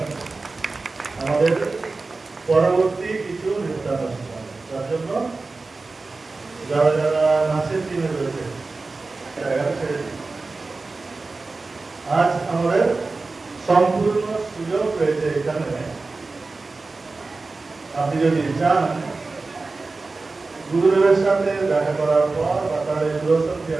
আমাদের পরবর্তী কিছু নির্বাচন তার জন্য যারা যারা নাচের টিমে রয়েছে আজ আমাদের সম্পূর্ণ সুযোগ রয়েছে এখানে। আপনি যদি চান গুরুদেবের সাথে দেখা করার পর বা তার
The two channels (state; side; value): quieter; left; 3.7 dB